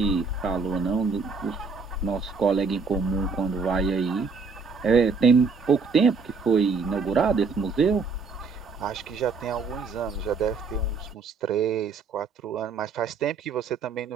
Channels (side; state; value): left; quieter; 4.7 dB